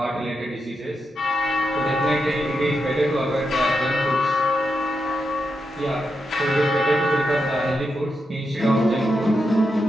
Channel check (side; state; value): both; normal; correlation 0.85